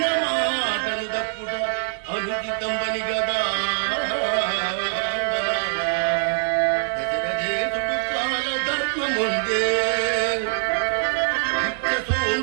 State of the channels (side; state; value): left; silent; 63 dB below the other